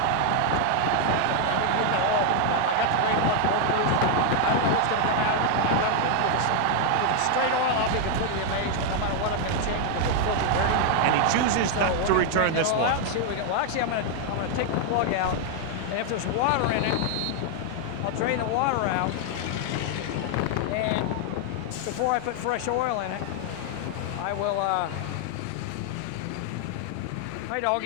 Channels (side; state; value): both; different; correlation 0.00